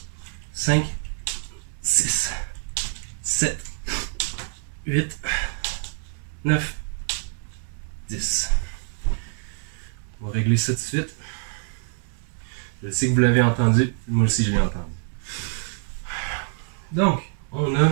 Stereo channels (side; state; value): left; silent; 56 dB below the other